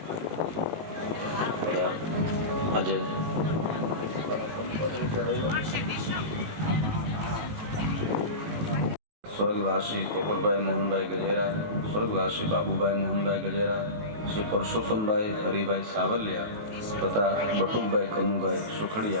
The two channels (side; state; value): left; late; 19 ms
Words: આજે સ્વર્ગવાસી પોપટભાઈ મોહનભાઈ ગજેરા, સ્વર્ગવાસી બાબુભાઈ મોહનભાઈ ગજેરા, શ્રી પરસોત્તમભાઈ હરિભાઈ સાવલિયા તથા બટુકભાઈ કનુભાઈ